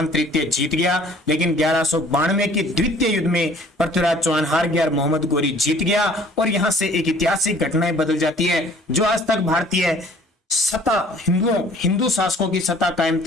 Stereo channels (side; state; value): both; normal; correlation 0.54